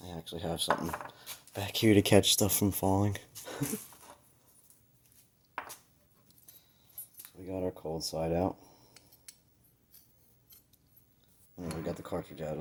I actually have something back here to catch stuff from falling. So we got our cold side out. And we got the cartridge out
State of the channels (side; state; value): both; identical; correlation 1.00